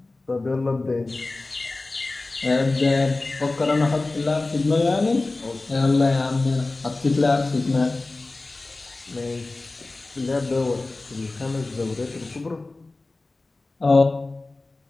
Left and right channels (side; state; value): right; quieter; 3.2 dB